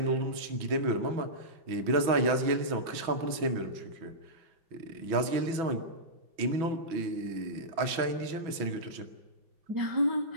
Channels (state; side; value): late; left; 6.1 ms